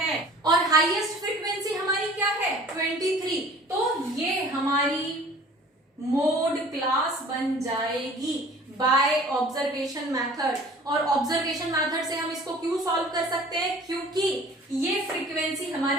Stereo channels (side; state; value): both; normal; correlation 0.48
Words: और हाईएस्ट फ्रीक्वेंसी हमारी क्या है? 23. तो ये हमारी मोड क्लास बन जाएगी बाय ऑब्जर्वेशन मेथड. और ऑब्जर्वेशन मेथड से हम इसको क्यों सॉल्व कर सकते हैं? क्योंकि ये फ्रीक्वेंसी